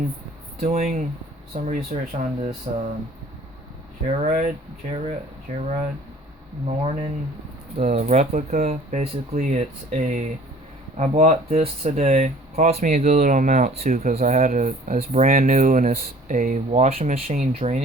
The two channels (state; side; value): normal; both; correlation 0.51